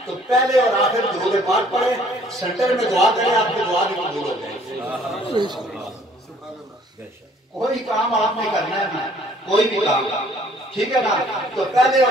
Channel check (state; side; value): normal; both; correlation 0.59